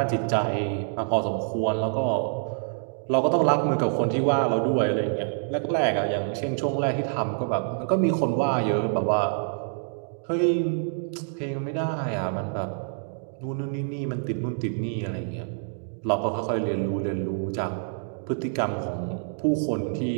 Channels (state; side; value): silent; left; digital silence